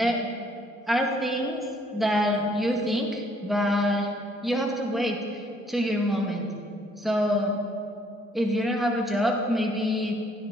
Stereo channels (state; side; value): normal; both; correlation 0.64